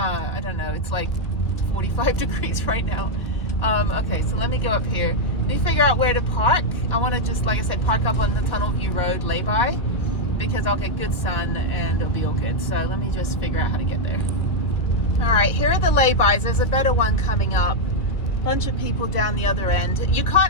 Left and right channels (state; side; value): late; right; 1.9 ms